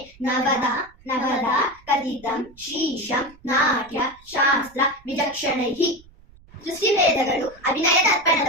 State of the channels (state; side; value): noise; right; rumble, 26 dB below the sound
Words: ನವದ ಕಥಿತಂ ಶೀಶಂ ನಾಟ್ಯ ಶಾಸ್ತ್ರ ವಿಚಕ್ಷಣೈಃ ಸೃಷ್ಟಿವೇದಗಳು ಅಭಿನಯ